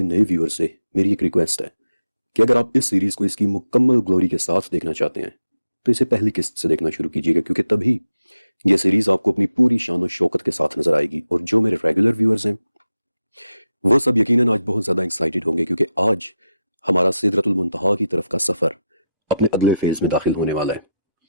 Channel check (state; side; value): inverted; both; correlation -0.89